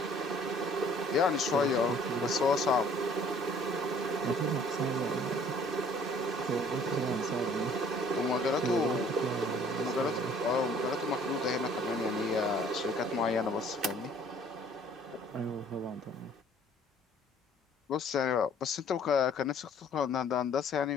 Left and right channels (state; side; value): normal; both; correlation 0.56